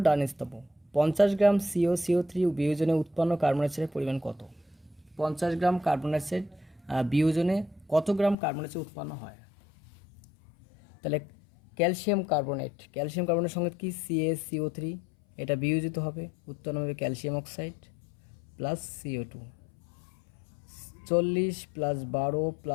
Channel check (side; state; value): right; drops out; at 8.3 s